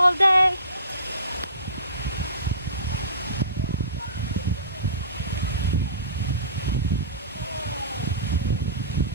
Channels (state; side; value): inverted; both; correlation -0.39